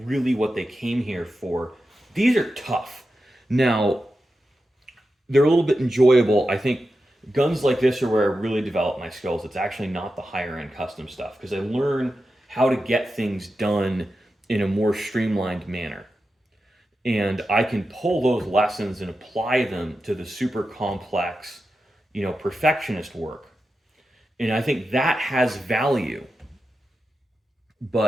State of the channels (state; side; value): normal; both; correlation 0.90